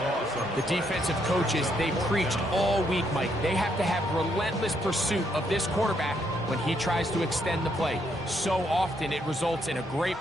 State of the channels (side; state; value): both; normal; correlation 0.74